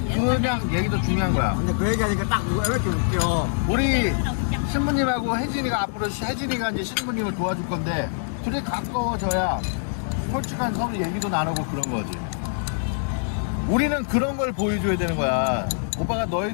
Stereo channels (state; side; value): silent; right; 62 dB below the other